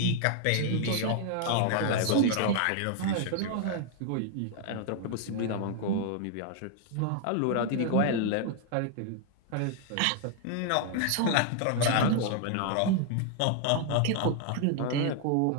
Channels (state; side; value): different; both; correlation 0.00